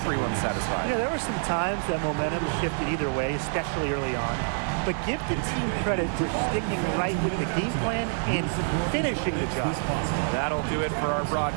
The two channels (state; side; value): silent; left; 60 dB below the other